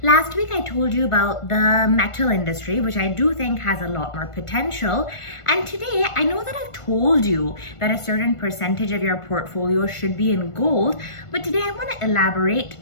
Last week I told you about the metal industry, which I do think has a lot more potential. And today I know that I've told you that a certain percentage of your portfolio should be in gold, but today I want to elaborate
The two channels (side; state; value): right; late; 1.5 ms